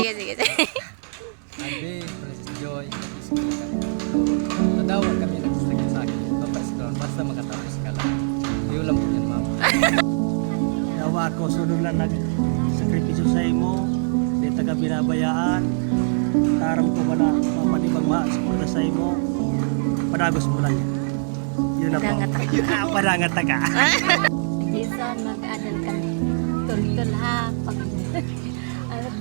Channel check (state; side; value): silent; left; 63 dB below the other